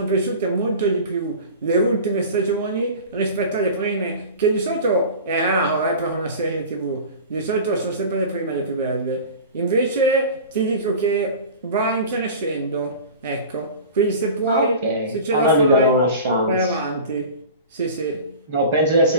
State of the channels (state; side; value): inverted; both; correlation -0.36